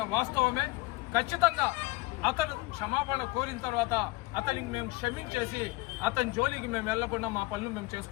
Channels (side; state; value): right; quieter; 22.1 dB